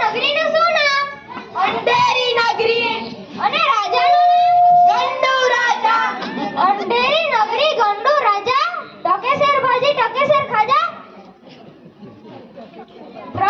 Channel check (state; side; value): identical; both; correlation 1.00